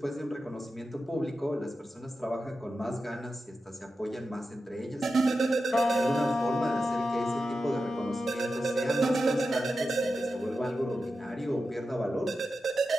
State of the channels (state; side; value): normal; both; correlation 0.91